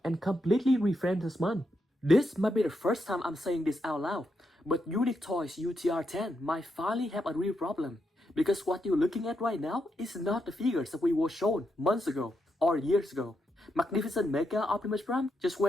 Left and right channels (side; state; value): both; normal; correlation 0.82